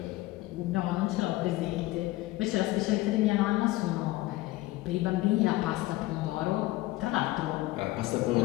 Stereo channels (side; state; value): right; quieter; 18.3 dB